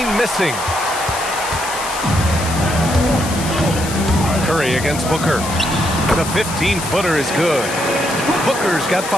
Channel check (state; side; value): noise; left; hiss, 9 dB below the sound